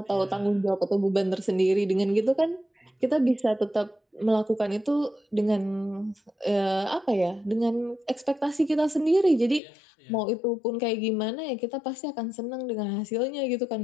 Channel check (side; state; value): right; drops out; at 9.6 s